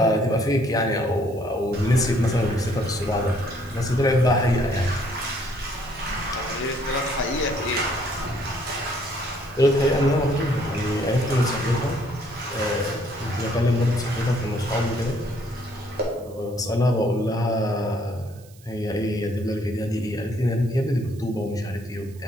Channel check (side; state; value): right; noise; hiss, 26 dB below the sound